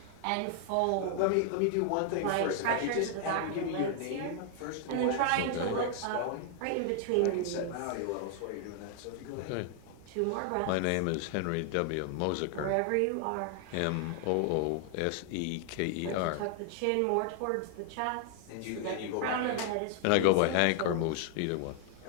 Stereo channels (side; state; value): both; different; correlation 0.00